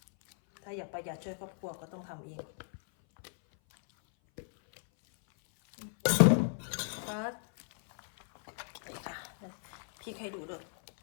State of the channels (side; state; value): right; silent; 55 dB below the other